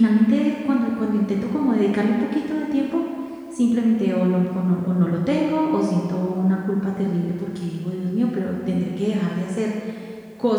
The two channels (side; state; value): both; identical; correlation 1.00